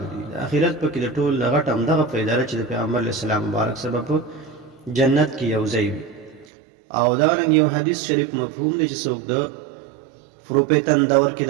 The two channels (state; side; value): drops out; left; at 6.5 s